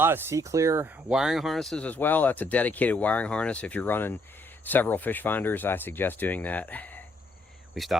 of C-Clear wiring harnesses as well. That's a dedicated wiring harness. If you're running several fish finders, I suggest doing that. We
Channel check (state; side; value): normal; both; correlation 0.70